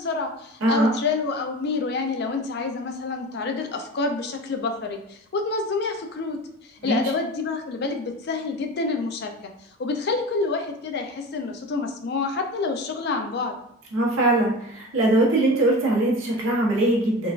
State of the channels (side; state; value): both; normal; correlation 0.32